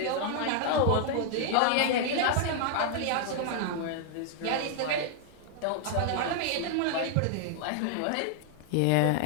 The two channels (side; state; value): both; different; correlation 0.00